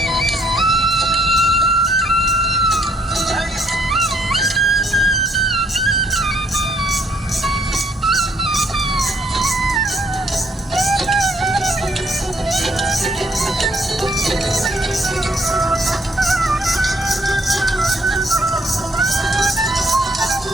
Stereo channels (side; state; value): both; normal; correlation 0.67